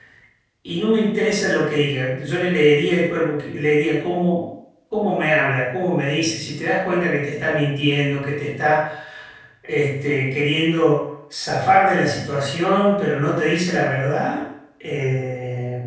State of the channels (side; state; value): both; identical; correlation 1.00